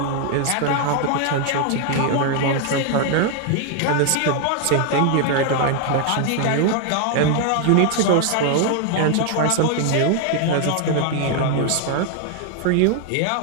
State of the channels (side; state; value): both; different; correlation 0.00